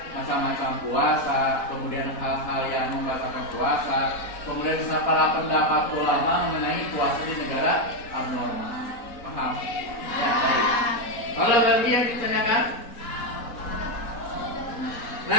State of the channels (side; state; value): right; late; 4.1 ms